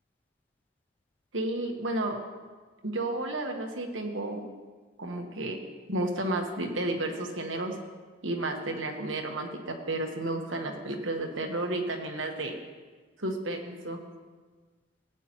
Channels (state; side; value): normal; both; correlation 0.17